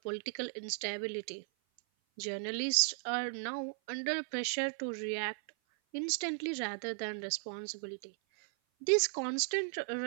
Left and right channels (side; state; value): left; silent; 54 dB below the other